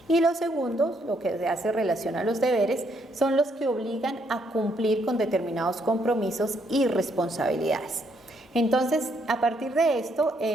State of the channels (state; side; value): normal; both; correlation 0.72